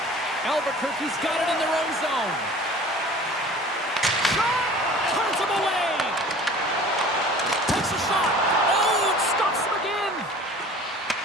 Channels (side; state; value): both; normal; correlation 0.45